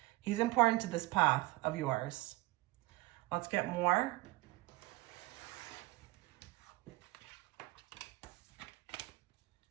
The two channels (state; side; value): quieter; left; 20.4 dB